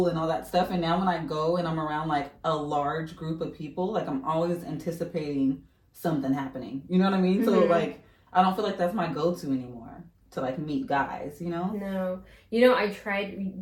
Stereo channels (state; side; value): identical; both; correlation 1.00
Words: and all that stuff. And now when I go and I'm around like a large group of people, like I'm always anticipating something happening. You know what I mean? Mm-hmm. So like I don't feel like that's my go-to anymore to like meet guys, you know? No. You know, I